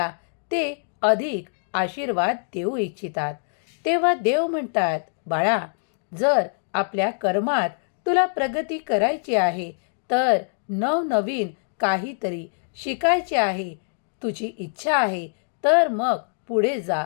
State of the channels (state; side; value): silent; right; digital silence